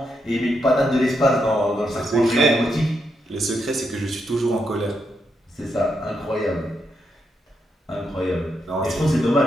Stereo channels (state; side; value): normal; both; correlation 0.82